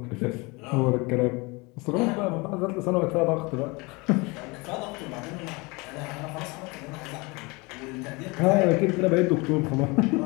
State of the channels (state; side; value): quieter; right; 26.4 dB